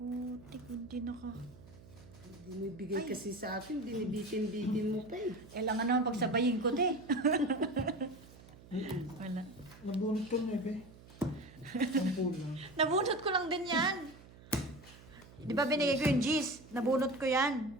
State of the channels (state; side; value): noise; right; hum, 21 dB below the sound